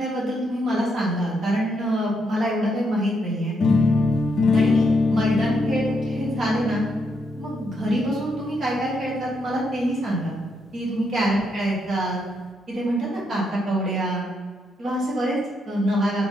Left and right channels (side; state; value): both; normal; correlation 0.78